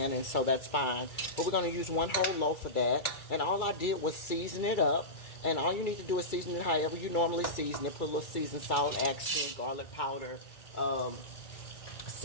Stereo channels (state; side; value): late; right; 2.3 ms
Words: and so that's fine. But we're going to use 1 whole loaf of that, and all I did was season it up. And all you need to do is season it however you normally season it. Put a little seasoned salt, accent, garlic powder,